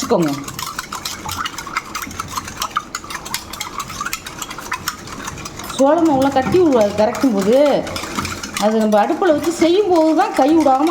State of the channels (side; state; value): both; identical; correlation 1.00